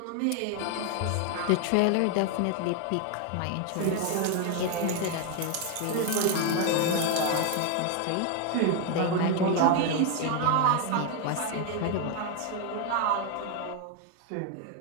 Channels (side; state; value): both; different; correlation 0.01